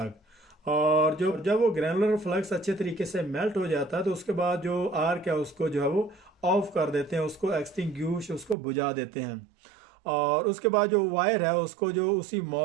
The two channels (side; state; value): left; drops out; at 8.6 s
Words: और जो जब वो ग्रेनुलर फ्लक्स अच्छे तरीके से मेल्ट हो जाता है तो उसके बाद जो आर्क है उसको जो है वो ऑफ कर देते हैं, उसको एक्सटिंग्विश उसको बुझा देते हैं। और उसके बाद जो वायर है उसको जो उसी